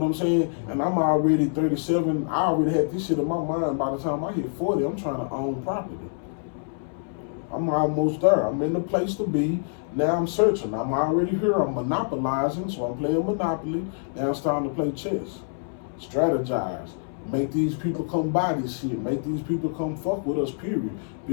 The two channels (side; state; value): right; silent; 61 dB below the other